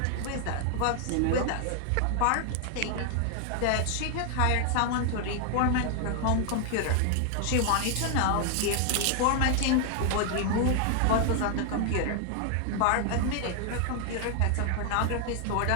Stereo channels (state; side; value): different; both; correlation 0.00